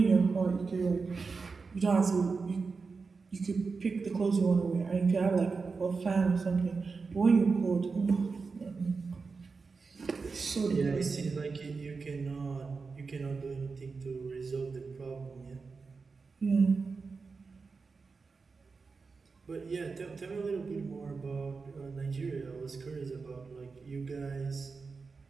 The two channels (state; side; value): quieter; left; 4.6 dB